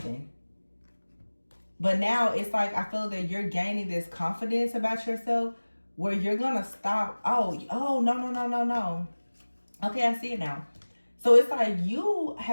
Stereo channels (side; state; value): both; inverted; correlation -1.00